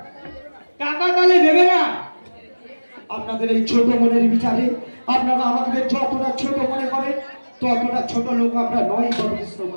টাকা তাহলে দেবে না? আপনাদের এই ছোট মনের বিচারে আপনারা আমাদের যতটা ছোট মনে করেন ততটা ছোট লোক আমরা নয় বরকৃষ্ণ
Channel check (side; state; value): both; inverted; correlation -1.00